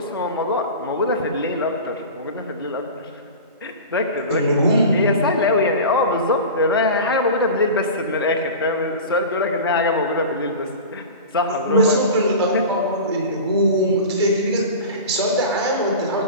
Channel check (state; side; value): inverted; both; correlation -0.32